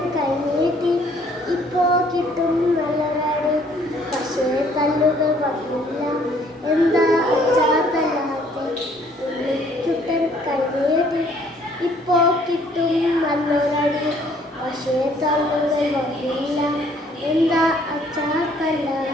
കൈനീട്ടി ഇപ്പോ കിട്ടും നല്ലതാണ് പക്ഷേ കല്ലുകൾ വന്നില്ല എന്താ അച്ഛാ തല്ലാത്തെ ഉണ്ണിക്കുട്ടൻ കൈനീട്ടി ഇപ്പോ കിട്ടും നല്ലൊരടി പക്ഷേ കല്ലുകൾ വന്നില്ല എന്താ അച്ഛാ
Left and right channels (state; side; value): normal; both; correlation 0.61